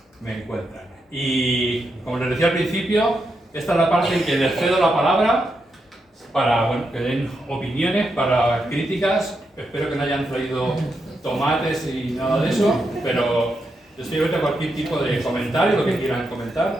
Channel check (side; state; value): both; normal; correlation 0.84